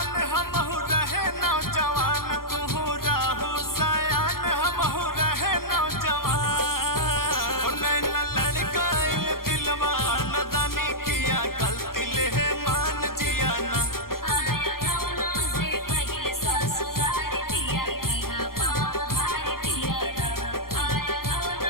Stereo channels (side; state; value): right; late; 0.92 ms